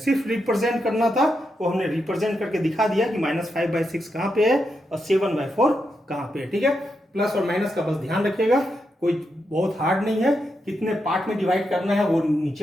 रिप्रेजेंट करना था, वो हमने रिप्रेजेंट करके दिखा दिया कि -5/6 कहां पे है और 7/4 कहां पे है। ठीक है, प्लस और माइनस का बस ध्यान रखिएगा, कोई बहुत हार्ड नहीं है। कितने पार्ट में डिवाइड करना है वो नीचे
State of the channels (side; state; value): both; normal; correlation 0.84